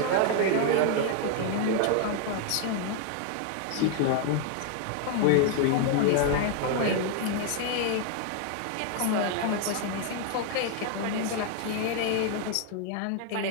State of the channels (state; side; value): different; both; correlation 0.00